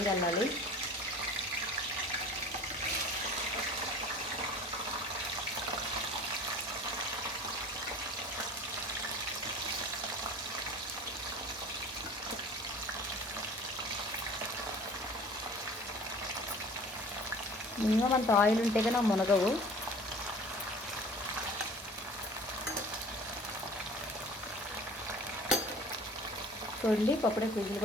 వెళ్ళాలి. మినిమం అంత ఆయిల్ ఉంటే కానీ మునగవు. చూడండి పప్పుడే విజిల్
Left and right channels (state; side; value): normal; both; correlation 0.45